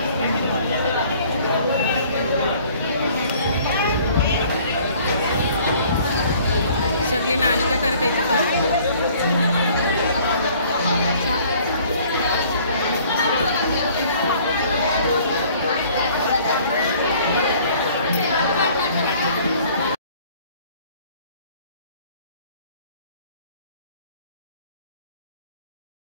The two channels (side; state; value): both; inverted; correlation -0.55